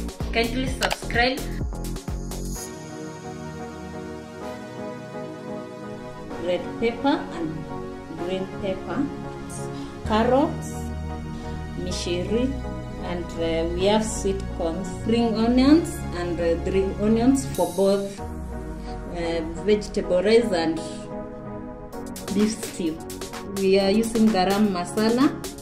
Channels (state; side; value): identical; both; correlation 1.00